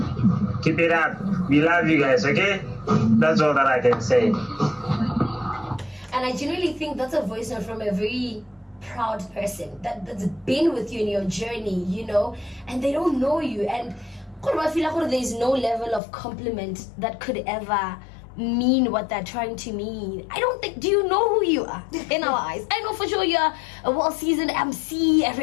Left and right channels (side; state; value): right; drops out; at 16.0 s